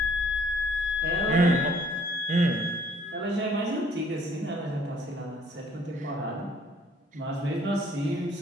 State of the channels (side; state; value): both; normal; correlation 0.60